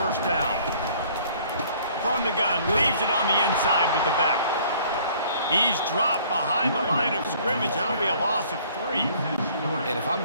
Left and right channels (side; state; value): both; inverted; correlation -0.56